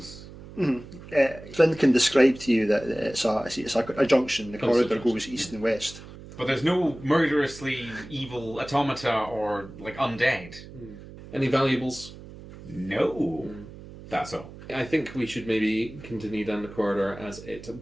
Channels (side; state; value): right; noise; hum, 16 dB below the sound